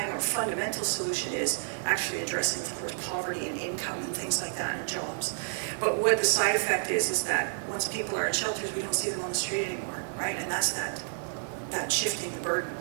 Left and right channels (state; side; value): silent; left; digital silence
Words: or fundamental solution is actually addressing, of course, poverty and income and things like that and jobs. But what the side effect is that once people are in shelters, we don't see them on the street anymore, right? And that's that shifting the burden.